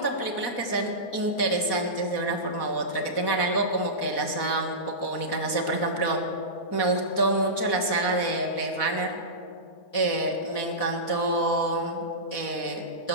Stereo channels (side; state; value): right; late; 4.1 ms